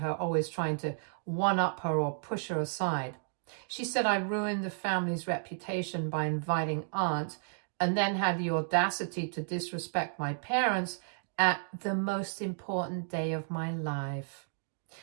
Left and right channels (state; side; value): silent; left; digital silence